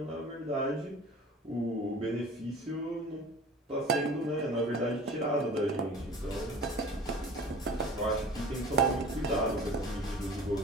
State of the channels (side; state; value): both; normal; correlation 0.41